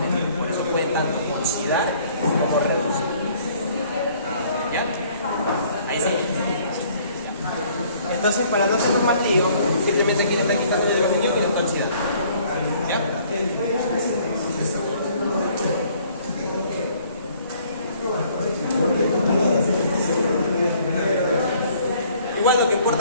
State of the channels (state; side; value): inverted; both; correlation -0.59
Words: Por eso pueden tanto oxidar como reducir. ¿Ya? Ahí sí. Entonces, para no hacernos más lío, simplemente aquí le está quitando el hidrogenio y lo está oxidando. ¿Ya? Igual lo que